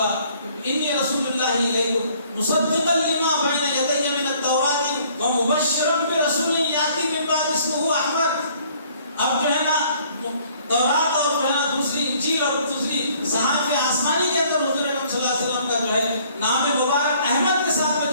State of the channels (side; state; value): both; inverted; correlation -0.59